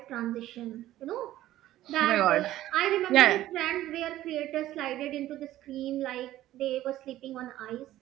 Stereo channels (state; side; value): quieter; left; 14.2 dB